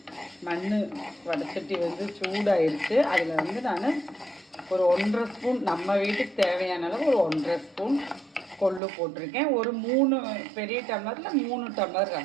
மண் வடச்சட்டி சூடாயிருச்சு. அதில் நான் ஒரு 1.5 ஸ்பூன், நம்ம வீட்டுக்கு தேவையான அளவு ஒரு 1.5 ஸ்பூன் கொள்ளு போட்டிருக்கேன். ஒரு 3 பெரிய டம்ளரில் 3 டம்ளர்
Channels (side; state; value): left; drops out; at 8.8 s